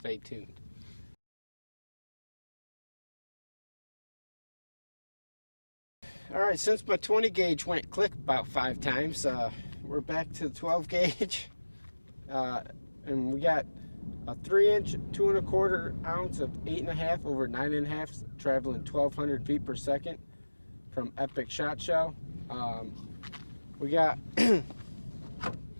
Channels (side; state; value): both; inverted; correlation -1.00